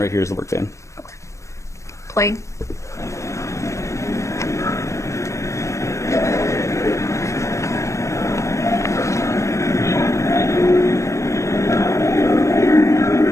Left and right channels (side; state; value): right; late; 0.15 ms